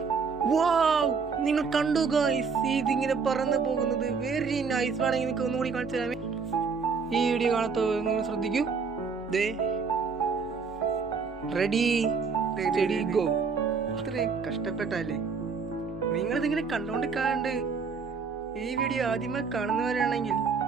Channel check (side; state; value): left; quieter; 5.3 dB